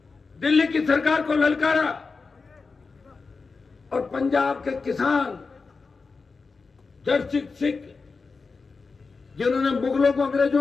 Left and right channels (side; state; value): right; quieter; 4.4 dB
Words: दिल्ली की सरकार को ललकारा और पंजाब के किसान जड़ सिख जिन्होंने मुगलों को,